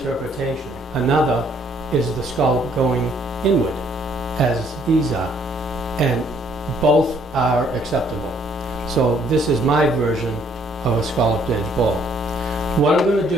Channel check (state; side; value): normal; both; correlation 0.65